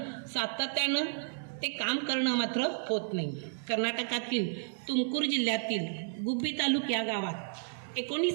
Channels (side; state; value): left; silent; digital silence